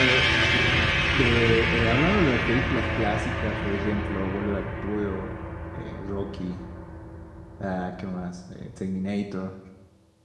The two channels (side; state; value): both; identical; correlation 1.00